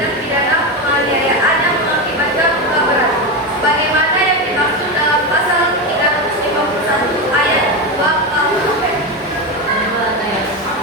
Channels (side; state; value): both; normal; correlation 0.15